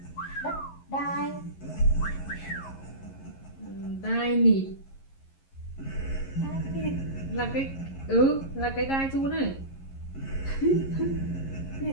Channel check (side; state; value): right; late; 11 ms